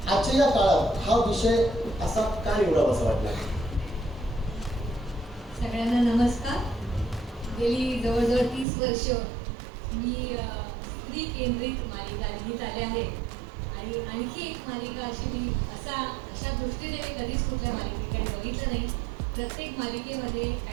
आजच्या या काळात हा विषय असा का निवडावा असं वाटलं? सगळ्यांना नमस्कार. गेली जवळजवळ 30 वर्ष मी स्त्री केंद्रित मालिका लिहित आले आहे आणि आणखी एक मालिका अशी मी अशा दृष्टीने मी कधीच कुठल्या मालिकेकडे बघितलं नाही. प्रत्येक मालिकेमध्ये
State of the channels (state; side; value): drops out; left; at 8.7 s